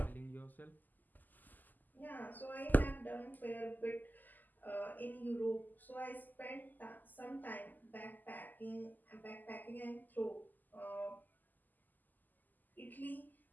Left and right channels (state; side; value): late; right; 0.085 ms